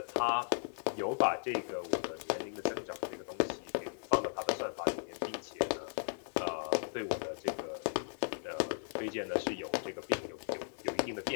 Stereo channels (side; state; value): right; silent; digital silence